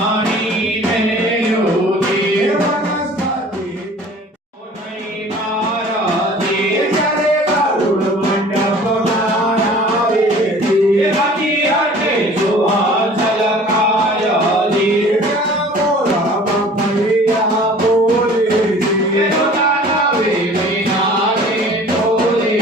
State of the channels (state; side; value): normal; both; correlation 0.47